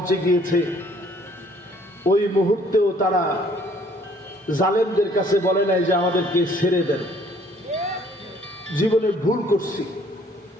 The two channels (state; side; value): normal; both; correlation 0.60